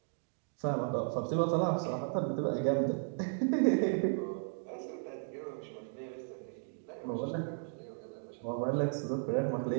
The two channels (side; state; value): left; silent; digital silence